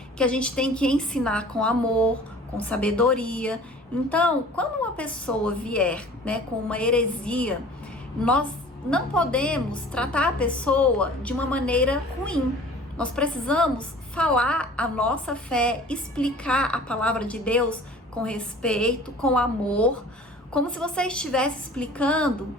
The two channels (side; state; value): both; normal; correlation 0.46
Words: que a gente tem que ensinar com amor, com sabedoria. Então, quando uma pessoa vier, né, com uma heresia, nós não podemos tratar a pessoa de uma maneira ruim. Nós precisamos falar a nossa fé, explicar a palavra de Deus com respeito, com amor, como se você estivesse explicando